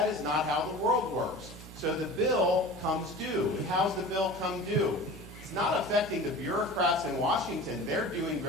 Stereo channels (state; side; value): normal; both; correlation 0.36